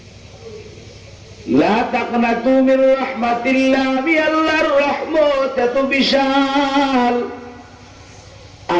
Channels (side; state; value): both; identical; correlation 1.00